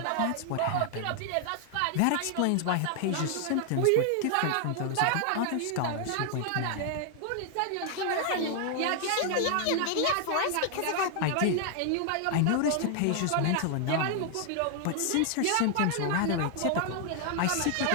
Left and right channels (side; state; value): both; different; correlation 0.00